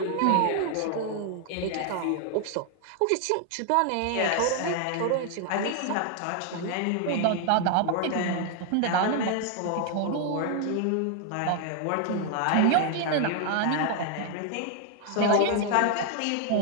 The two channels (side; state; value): both; different; correlation 0.00